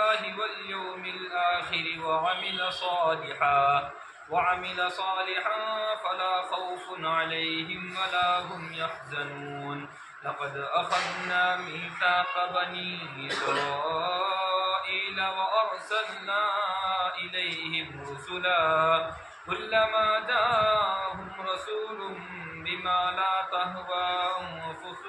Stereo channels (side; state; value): both; identical; correlation 1.00